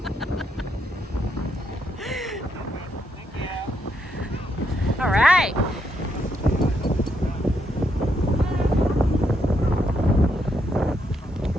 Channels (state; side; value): normal; both; correlation 0.78